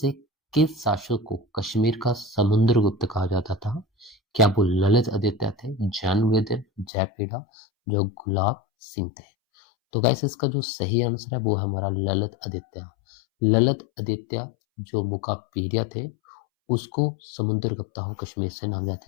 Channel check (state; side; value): drops out; right; at 6.9 s